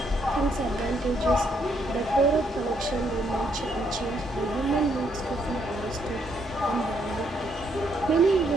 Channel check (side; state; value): both; normal; correlation 0.73